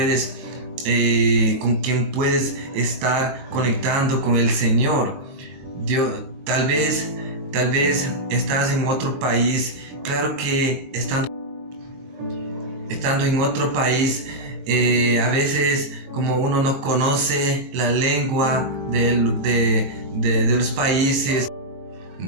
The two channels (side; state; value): left; late; 23 ms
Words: estar conectando con el Señor. Tal vez estás en otro país. Claro que estando en otro país, a veces, como uno no conoce la lengua de los países,